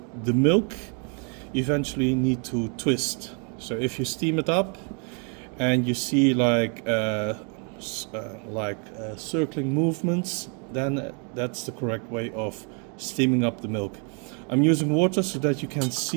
milk eventually need to twist. So if you steam it up and you see like circling movements, then that's the correct way of steaming up the milk. I'm using water so that you can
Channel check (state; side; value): quieter; left; 38.3 dB